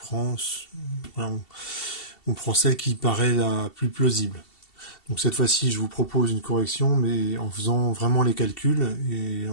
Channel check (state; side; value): late; right; 2.7 ms